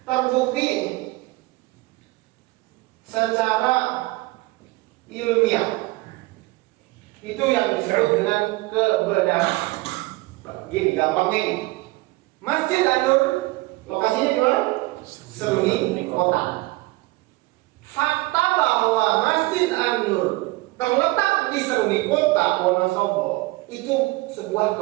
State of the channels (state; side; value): quieter; left; 21.5 dB